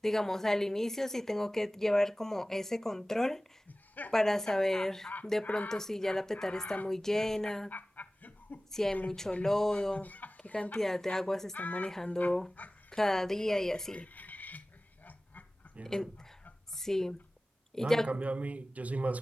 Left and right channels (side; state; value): both; normal; correlation 0.97